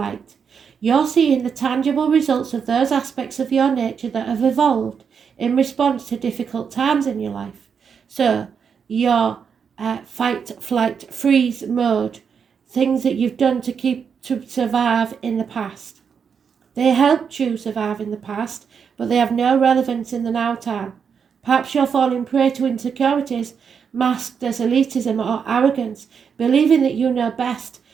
You're seeing the tangible results of those aspects of your nature that have evolved in response to difficult times in your life. So, your fight, flight, freeze mode, things that you've done to survive in the past. They helped you survive in the past, but they have no relevance in the now time. Perhaps you're falling prey to insecurities masked as elitism or arrogance, believing that you know best,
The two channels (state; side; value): quieter; left; 6.6 dB